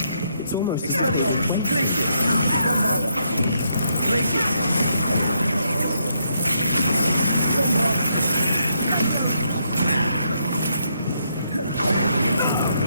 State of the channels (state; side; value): inverted; both; correlation -0.77